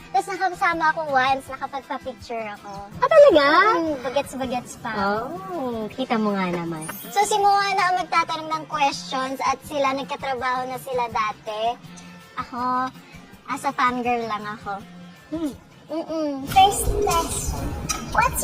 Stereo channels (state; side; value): identical; both; correlation 1.00